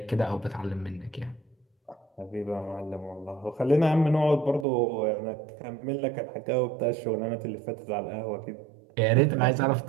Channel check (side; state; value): left; drops out; at 4.7 s